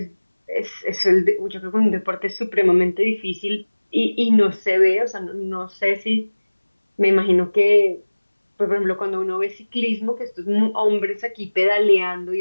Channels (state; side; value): inverted; both; correlation -1.00